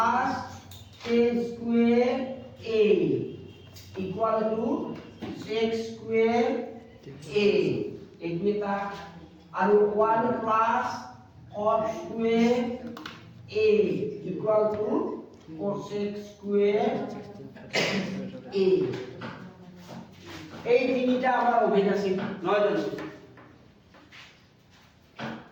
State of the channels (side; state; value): both; identical; correlation 1.00